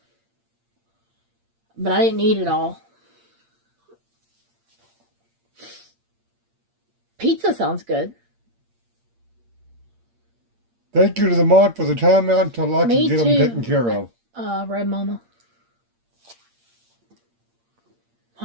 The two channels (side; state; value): left; late; 8.7 ms